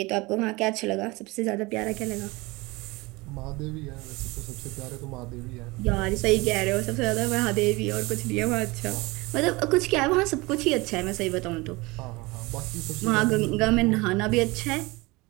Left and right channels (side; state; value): left; quieter; 23.5 dB